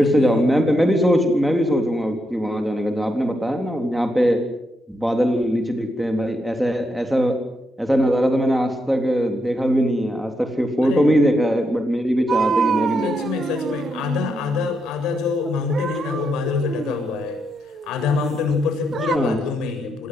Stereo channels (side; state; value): both; normal; correlation 0.81